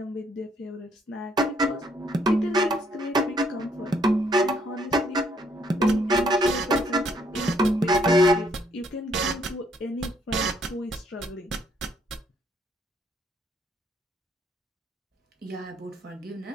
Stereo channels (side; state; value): both; normal; correlation 0.69